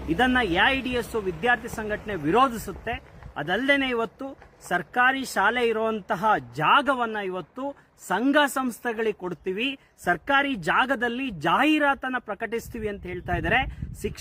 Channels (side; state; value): both; identical; correlation 1.00